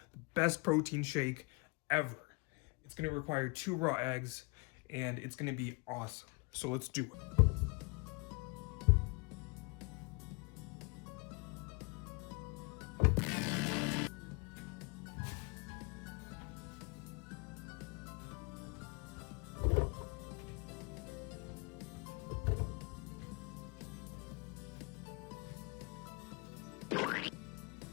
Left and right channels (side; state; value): right; quieter; 29.1 dB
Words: the best protein shake ever. It's going to require 2 raw eggs, and it's going to be awesome. So let's do it.